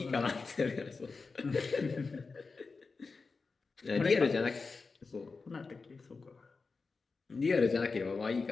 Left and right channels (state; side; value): quieter; right; 4.3 dB